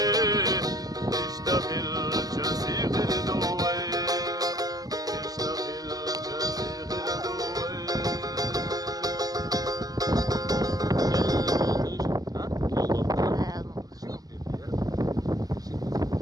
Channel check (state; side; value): late; left; 0.18 ms